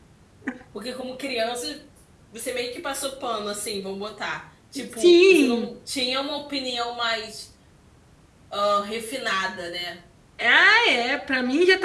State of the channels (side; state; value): both; identical; correlation 1.00